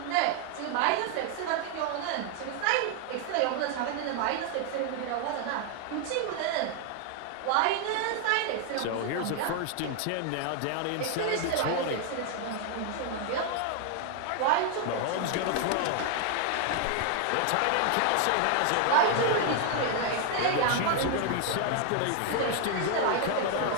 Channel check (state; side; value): different; both; correlation 0.00